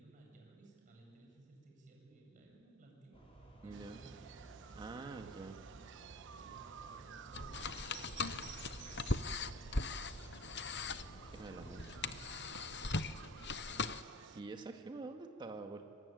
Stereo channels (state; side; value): normal; both; correlation 0.46